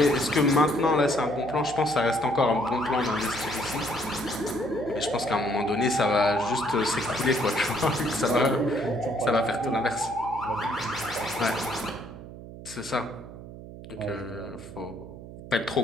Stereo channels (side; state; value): right; noise; hum, 14 dB below the sound